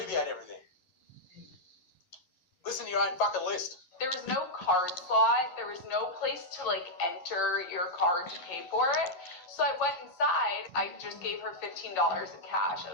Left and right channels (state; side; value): late; right; 11 ms